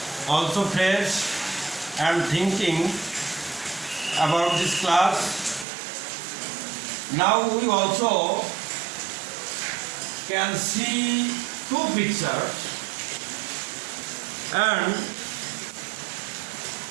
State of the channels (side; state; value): left; drops out; at 5.7 s